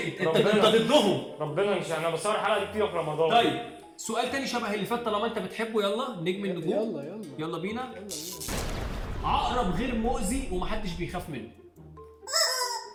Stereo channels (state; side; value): identical; both; correlation 1.00